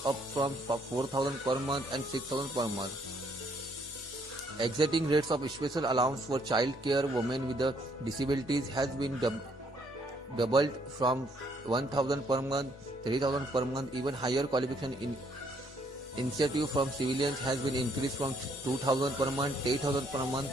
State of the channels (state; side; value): normal; both; correlation 0.68